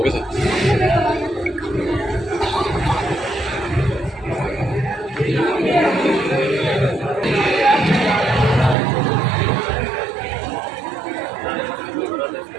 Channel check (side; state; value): left; drops out; at 8.8 s